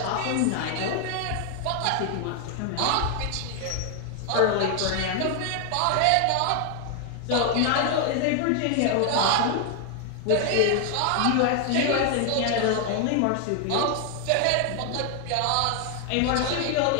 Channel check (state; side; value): different; both; correlation 0.00